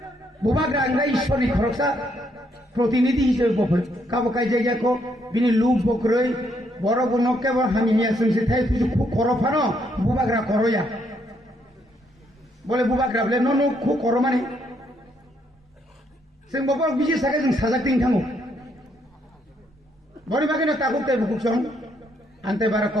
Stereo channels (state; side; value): normal; both; correlation 0.73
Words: बुबाग्रा आंलाय ईश्वरनि खरकसा प्रतिनिधि हिसाबै बफोर काबकाय जायगाखौ बिनि लुक बक्रै बर बनके हामि हिया जोंसे थाय फुजु खरफानो बुबाग्रा करया बोले बुबाग्रा बोले न खु कर माने जों बबर बिजि सागे जों साजाकथिं थांगो बरि बागैनो ताकुकते बुकुसं आन्ते बारा